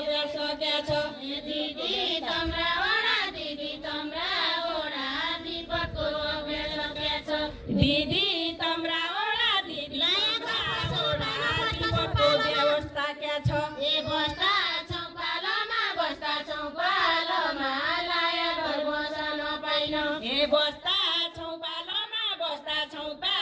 के छ दिदी तम्राओडा दिदी तम्राओडा विपदको अभ्यास के छ दिदी तम्राओडा दिदी तम्राओडा विपदको व्यवस्था के छ ए बस्दा छौँ पालोमा बस्दा छौँ पालोमा लाया घर बस्न पाइन ए बस्दा छौँ पालोमा बस्दा छौँ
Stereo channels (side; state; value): both; identical; correlation 1.00